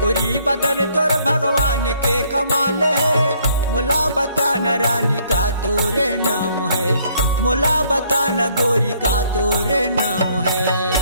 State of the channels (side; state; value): both; inverted; correlation -0.65